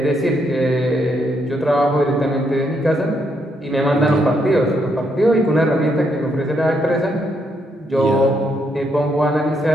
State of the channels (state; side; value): normal; both; correlation 0.76